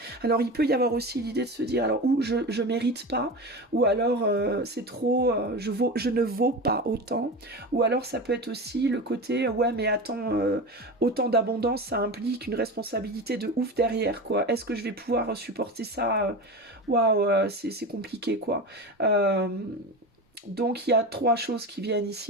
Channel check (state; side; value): normal; both; correlation 0.27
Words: Alors, il peut y avoir aussi l'idée de se dire, alors, ou je mérite pas, ou alors c'est trop, je ne vaux pas autant, ou alors ça peut être aussi le côté, ouais, mais attends, autant d'abondance, ça implique une responsabilité de ouf derrière, quoi. Est-ce que je vais pouvoir supporter ça? Waouh, c'est compliqué, quoi. Euh, donc il y a trois choses qui viennent